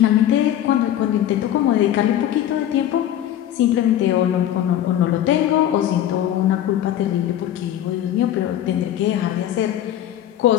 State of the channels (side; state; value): right; quieter; 11.6 dB